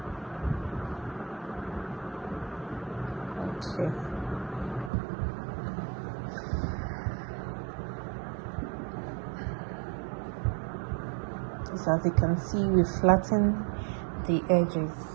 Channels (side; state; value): left; drops out; at 4.9 s